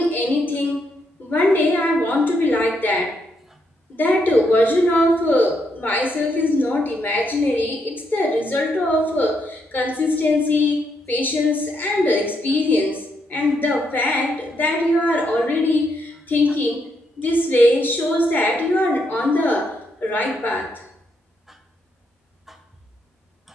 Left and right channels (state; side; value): normal; both; correlation 0.78